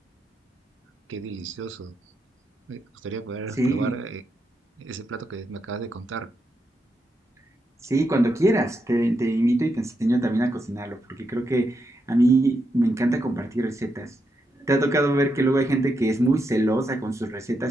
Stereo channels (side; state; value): both; normal; correlation 0.83